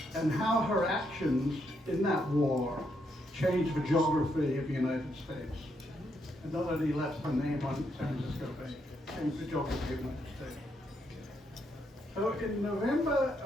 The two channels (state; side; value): normal; both; correlation 0.77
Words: and how her actions in that war changed the geography of the United States. And not only left her name on San Francisco Bay, changed the geography of the United States. So in November